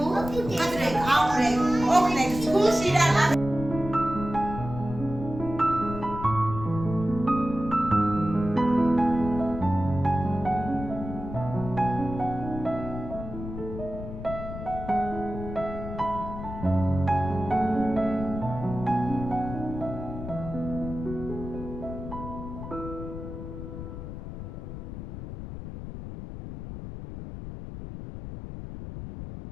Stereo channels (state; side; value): noise; left; rumble, 9 dB below the sound